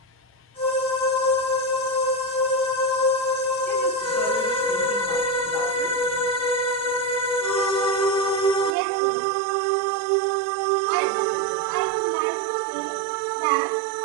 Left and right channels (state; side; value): drops out; left; at 8.8 s